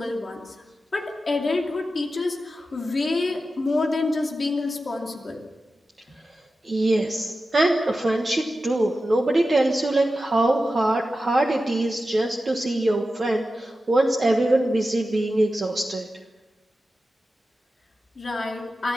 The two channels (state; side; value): normal; both; correlation 0.92